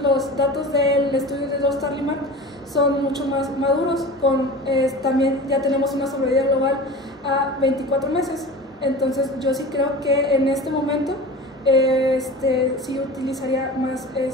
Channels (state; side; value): normal; both; correlation 0.34